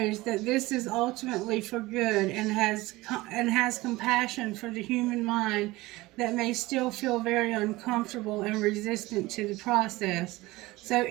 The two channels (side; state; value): left; quieter; 19.9 dB